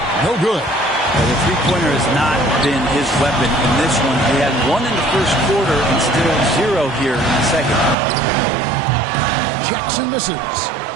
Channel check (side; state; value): left; drops out; at 8.0 s